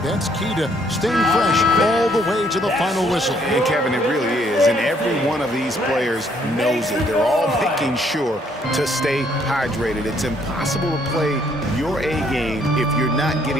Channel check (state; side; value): normal; both; correlation 0.67